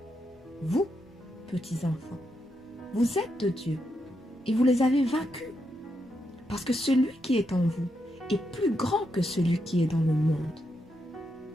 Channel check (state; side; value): normal; both; correlation 0.82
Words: Vous, petits enfants, vous êtes de Dieu et vous les avez vaincus, parce que celui qui est en vous est plus grand que celui qui est dans le monde.